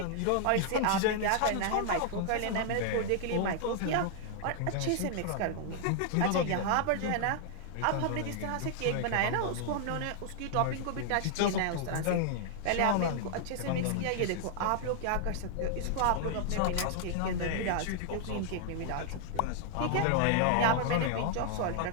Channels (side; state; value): both; different; correlation 0.00